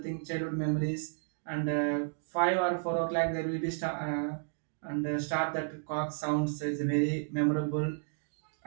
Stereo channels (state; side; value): silent; left; digital silence